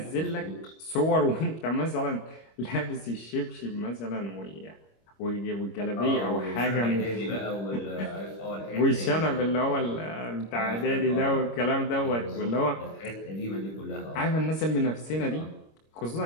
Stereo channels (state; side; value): late; right; 25 ms